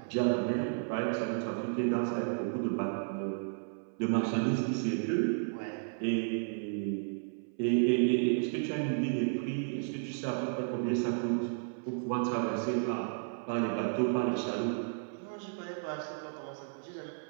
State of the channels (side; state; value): left; silent; 56 dB below the other